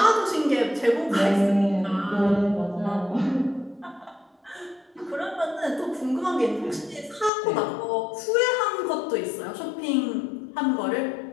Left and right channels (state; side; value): drops out; right; at 7.3 s